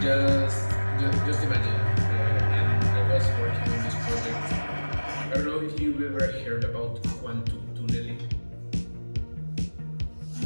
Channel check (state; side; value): inverted; both; correlation -1.00